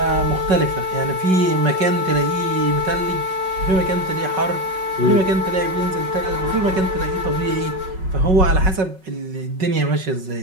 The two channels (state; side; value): late; left; 5.3 ms